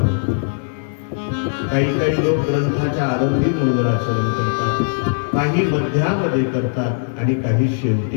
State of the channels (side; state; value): right; silent; digital silence